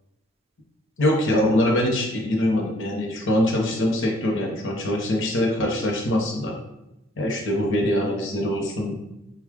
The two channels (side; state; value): both; normal; correlation 0.61